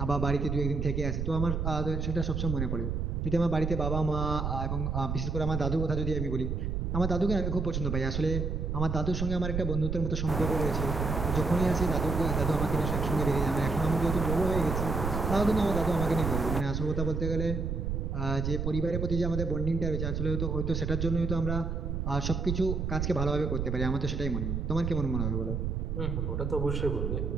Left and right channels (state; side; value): noise; right; rumble, 1 dB below the sound